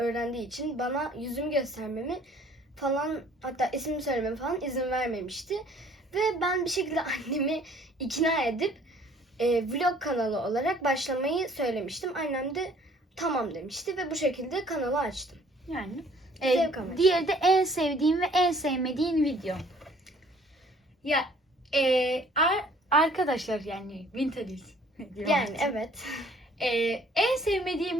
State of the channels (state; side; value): normal; both; correlation 0.57